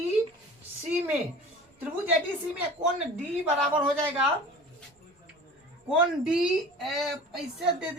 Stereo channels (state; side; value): normal; both; correlation 0.41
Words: सी में, त्रिभुज एडीसी में कोण डी बराबर हो जाएगा, कोण डी ऐसे दे